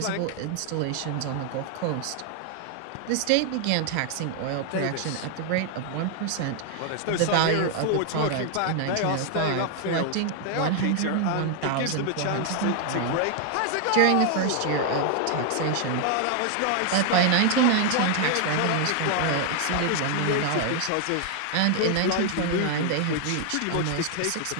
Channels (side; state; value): both; different; correlation 0.00